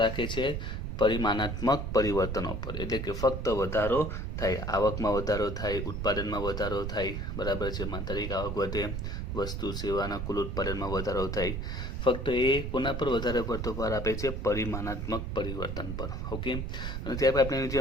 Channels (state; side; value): noise; right; rumble, 4 dB below the sound